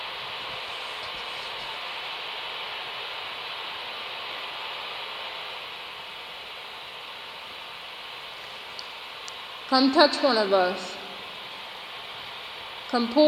Come touch one of us. Come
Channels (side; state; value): both; identical; correlation 1.00